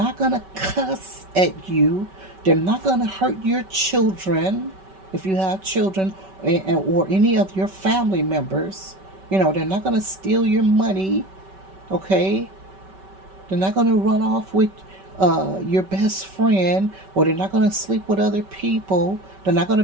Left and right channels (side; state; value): left; late; 5.2 ms